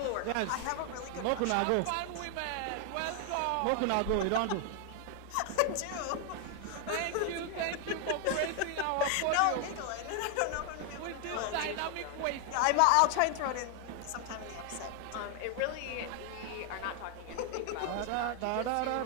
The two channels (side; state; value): both; different; correlation 0.01